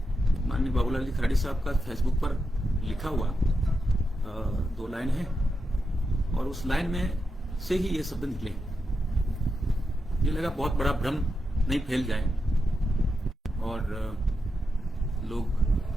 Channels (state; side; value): normal; both; correlation 0.86